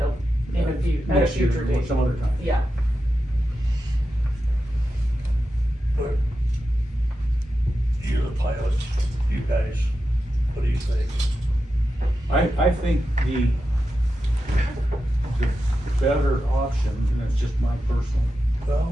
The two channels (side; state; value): both; normal; correlation 0.90